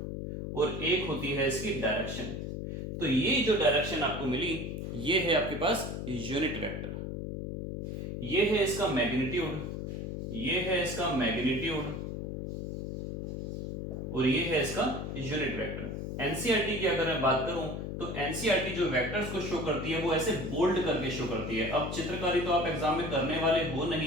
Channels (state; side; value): noise; left; hum, 5 dB below the sound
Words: और एक होती है इसकी डायरेक्शन। तो ये जो डायरेक्शन आपको मिली, ये है आपके पास यूनिट वेक्टर। ये है इसका मैग्नीट्यूड, ये है इसका मैग्नीट्यूड और ये है इसका यूनिट वेक्टर। एनसीईआरटी की अगर मैं बात करूं, तो एनसीईआरटी जो वेक्टर्स को शो करती है वो ऐसे बोल्ड करके शो करती है। अब चित्रकारी तो आप एग्जाम में करने वाले हो